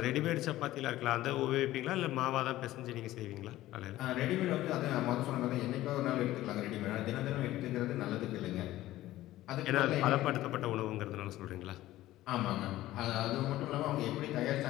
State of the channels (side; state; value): right; quieter; 15.5 dB